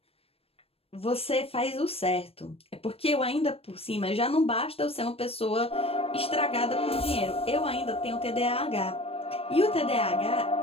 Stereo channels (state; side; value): late; right; 0.28 ms